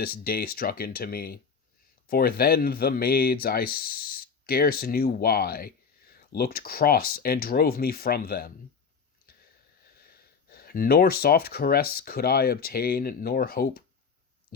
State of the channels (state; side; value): quieter; right; 5.8 dB